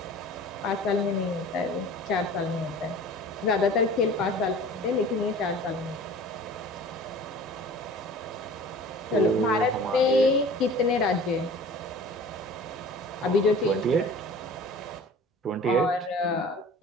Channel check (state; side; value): normal; both; correlation 0.43